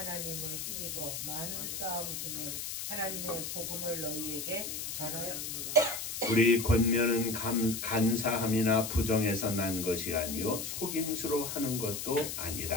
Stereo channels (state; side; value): noise; left; hiss, 5 dB below the sound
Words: 힘입어 많은 싸움 중에 하나님의 복음을 너희에게 전하였노라. 우리 권면은 간사함이나 부정에서 난 것이 아니요 속임수로 하는 것도